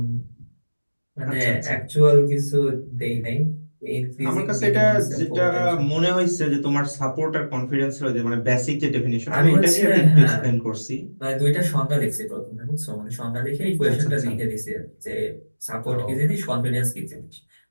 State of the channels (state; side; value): inverted; both; correlation -1.00